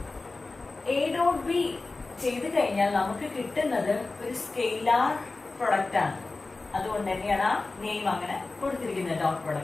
എ ഡോട്ട് ബി ചെയ്ത് കഴിഞ്ഞാൽ നമുക്ക് കിട്ടുന്നത് ഒരു സ്കെയിലാർ പ്രൊഡക്റ്റ് ആണ്. അതുകൊണ്ട് തന്നെയാണ് ആ നെയിം അങ്ങനെ കൊടുത്തിരിക്കുന്നത് ഡോട്ട്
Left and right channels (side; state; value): right; quieter; 3.5 dB